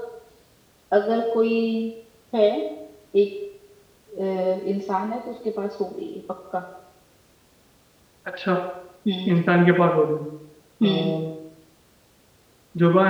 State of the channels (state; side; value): identical; both; correlation 1.00